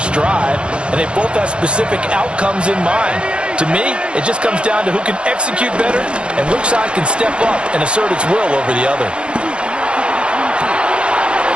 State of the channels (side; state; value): left; late; 0.056 ms